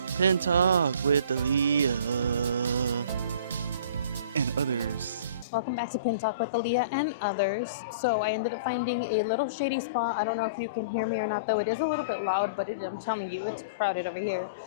Pin talk with Aaliyah. And others. Welcome back to Pin Talk with Aaliyah and others. So I ended up finding a little shady spot. I don't know if you can hear me or not, though. It is a little bit loud, but I'm telling you, it's crowded over here.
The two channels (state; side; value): inverted; both; correlation -0.43